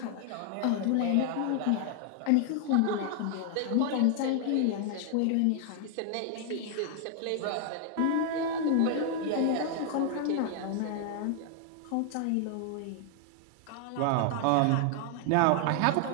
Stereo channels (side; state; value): both; different; correlation 0.00